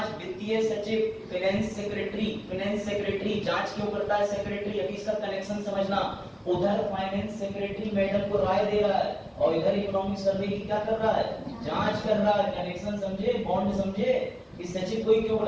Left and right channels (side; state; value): both; identical; correlation 1.00